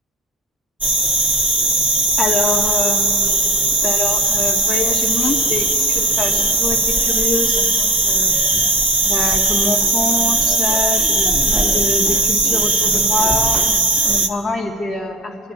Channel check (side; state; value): both; normal; correlation 0.34